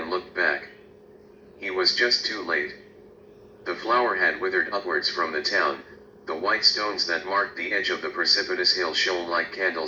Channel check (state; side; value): identical; both; correlation 1.00